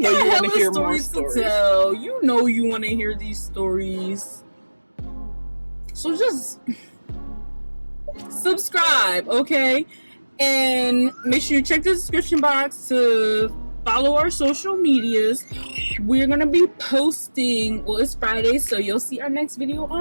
hella stories to tell. You know you want to hear these stories. So just subscribe, okay? And make sure you check the description box to follow our social medias. We're gonna be posting, well, it's Friday, so you'll see our next video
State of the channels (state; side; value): inverted; both; correlation -1.00